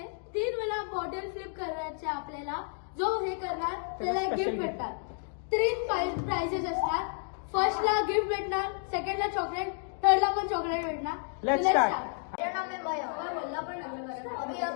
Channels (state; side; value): silent; right; 57 dB below the other